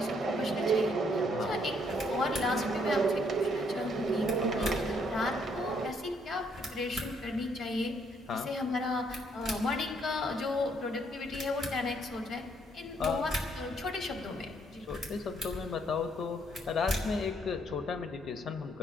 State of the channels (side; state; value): both; normal; correlation 0.69